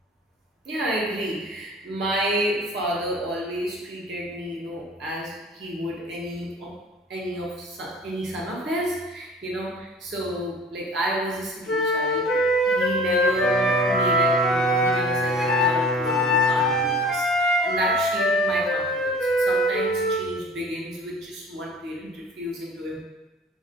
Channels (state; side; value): normal; both; correlation 0.45